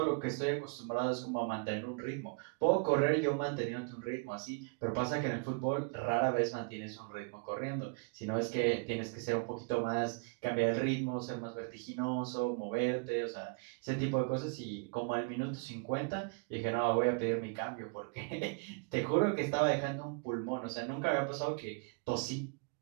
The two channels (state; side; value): quieter; left; 33.7 dB